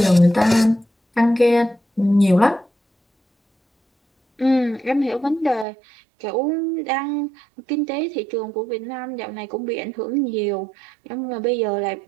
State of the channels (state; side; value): drops out; left; at 5.7 s